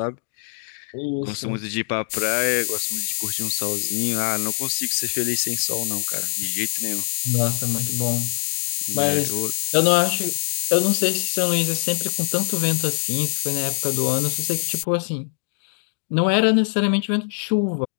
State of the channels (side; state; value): right; silent; digital silence